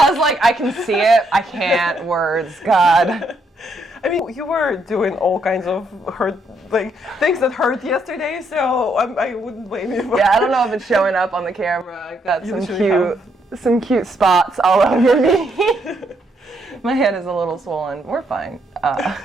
was like, I can see it, I can't, words, God. I mean, you were doing all kinds of hurt, like, things that hurt yesterday, so I wouldn't blame you for Yeah, I don't know if it's showing up on the camera. I got You some cute spots all over me. My head is a little swollen. We're fine.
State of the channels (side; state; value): both; normal; correlation 0.74